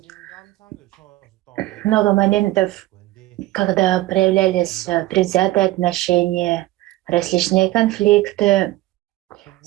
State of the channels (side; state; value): left; quieter; 17.4 dB